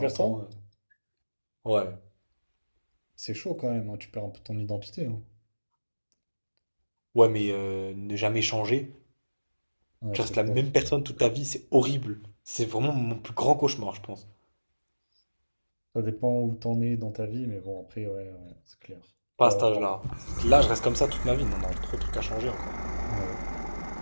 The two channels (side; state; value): both; inverted; correlation -1.00